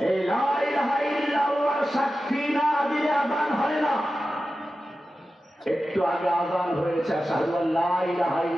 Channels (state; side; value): normal; both; correlation 0.93